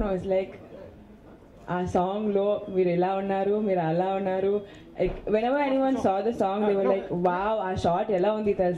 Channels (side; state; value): both; identical; correlation 1.00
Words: వాజ్ లైక్, ఆ సాంగ్లో మీరు ఇలా ఉన్నారు, మీరు అలా ఉన్నారు. Like whenever anyone saw the song they were like wow, ఆ షాట్ ఎలా ఉంది